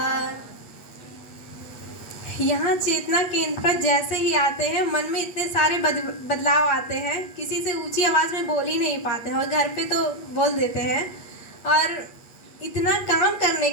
यहाँ चेतना केंद्र पर जैसे ही आते हैं मन में इतने सारे बदलाव आते हैं, किसी से ऊंची आवाज़ में बोल ही नहीं पाते हैं और घर पे तो बोल देते हैं। और इतना काम करने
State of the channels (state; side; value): late; right; 8.3 ms